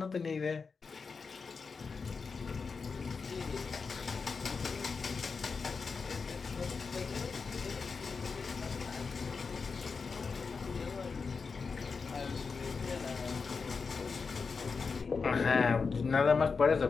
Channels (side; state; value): right; quieter; 5.0 dB